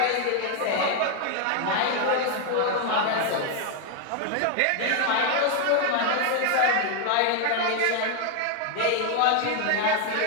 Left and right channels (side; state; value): both; different; correlation 0.01